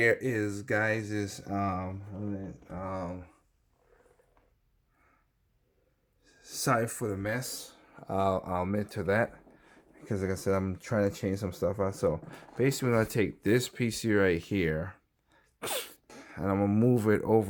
is, guys, is sorry for the mess. I'll admit to that, because like I said, I'm trying to change some stuff out. So basically I'm gonna take this PC right here and I'm gonna move it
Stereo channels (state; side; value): identical; both; correlation 1.00